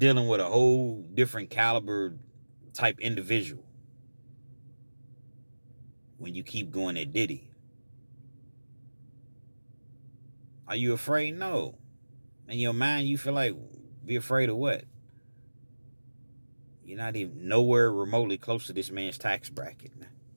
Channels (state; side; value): inverted; both; correlation -1.00